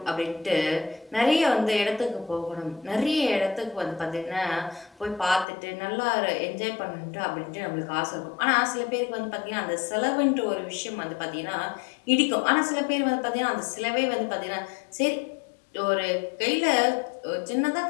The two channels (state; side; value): drops out; right; at 5.5 s